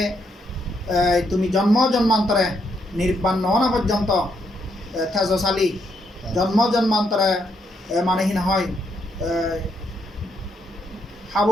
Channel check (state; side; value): normal; both; correlation 0.76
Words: তুমি জন্ম জন্মান্তরে নির্বাণ নহনা পর্যন্ত তেজশালী জন্ম জন্মান্তরে মানেহীন হয়